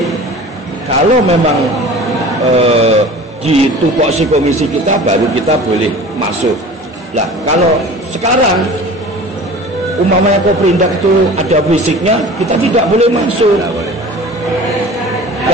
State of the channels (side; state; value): both; normal; correlation 0.41